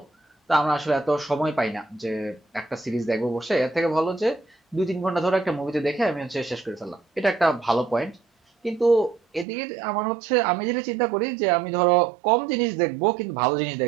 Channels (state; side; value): drops out; left; at 9.5 s